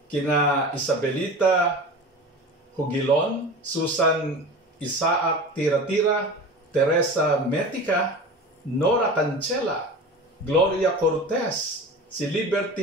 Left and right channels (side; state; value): both; normal; correlation 0.33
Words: kina Isabelita Hugilon, Susan Isaac Tira-Tira, Teresa Metica, Nora Cancela, Gloria Cortez, si